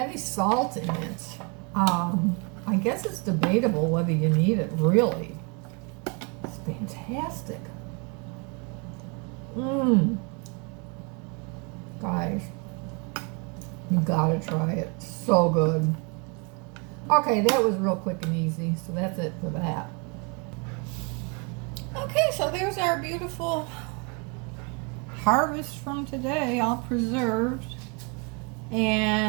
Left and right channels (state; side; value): quieter; left; 32.3 dB